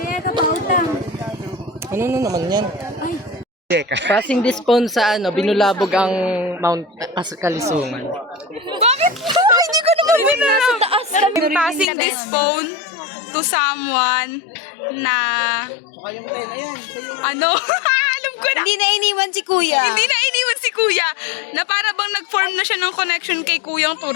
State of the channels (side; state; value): right; drops out; at 11.9 s